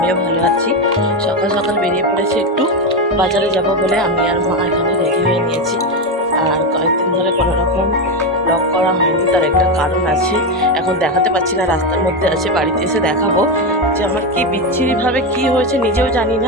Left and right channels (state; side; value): normal; both; correlation 0.12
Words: ভালো আছি। সকাল সকাল বেরিয়ে পড়েছি একটু বাজারে যাব বলে। আমি আর মা এখানে রেডি হয়ে নিয়েছি। আর কয়েকদিন ধরে কোনো রকম ব্লগ করা হয়নি, তার একটা কারণ আছে। এখন দেখাতে পারছি না, রাস্তার মধ্যে আছে, বাড়িতে এসে দেখাবো যে আমার কি বিচ্ছিরিভাবে কি হয়েছে নিজেও জানি